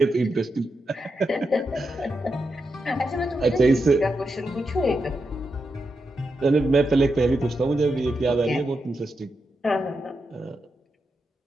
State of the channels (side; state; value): both; normal; correlation 0.86